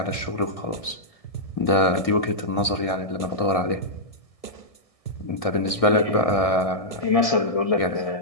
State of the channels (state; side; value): late; right; 1.6 ms